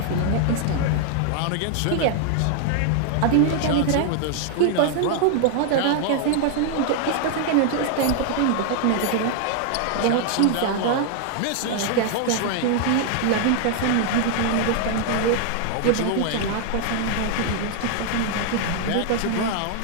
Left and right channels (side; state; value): both; different; correlation 0.00